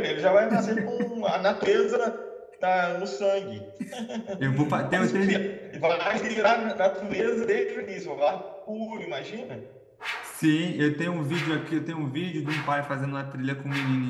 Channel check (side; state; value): both; identical; correlation 1.00